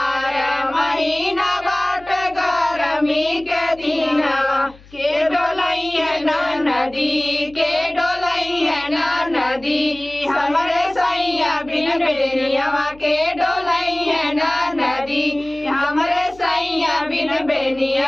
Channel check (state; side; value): noise; left; hum, 24 dB below the sound